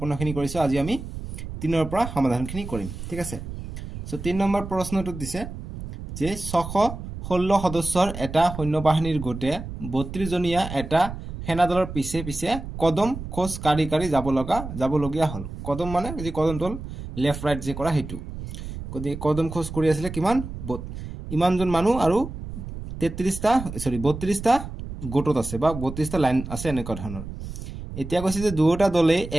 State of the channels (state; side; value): noise; right; rumble, 9 dB below the sound